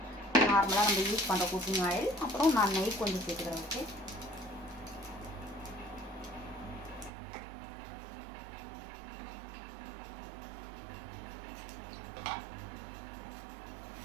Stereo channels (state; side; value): drops out; left; at 7.1 s